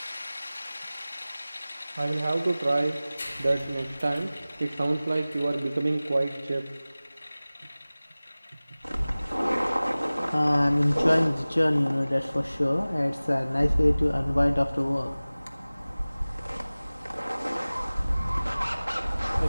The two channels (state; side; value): inverted; both; correlation -0.99